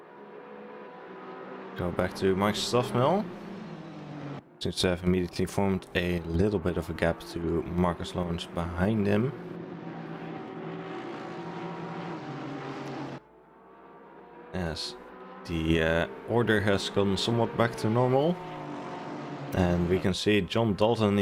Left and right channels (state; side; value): identical; both; correlation 1.00